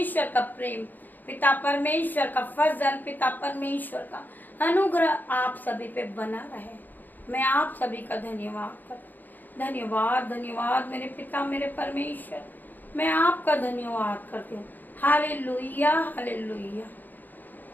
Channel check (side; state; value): right; late; 0.086 ms